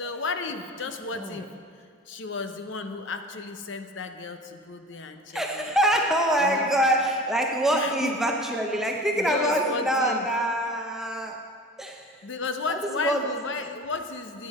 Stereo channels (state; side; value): normal; both; correlation 0.38